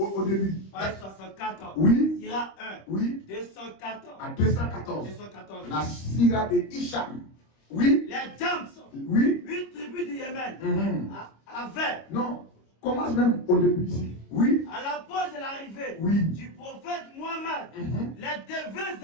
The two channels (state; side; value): late; right; 25 ms